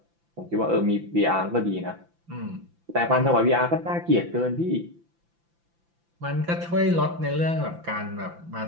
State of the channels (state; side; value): late; left; 5.9 ms